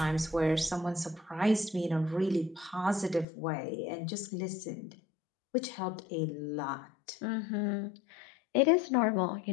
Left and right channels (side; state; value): right; drops out; at 3.2 s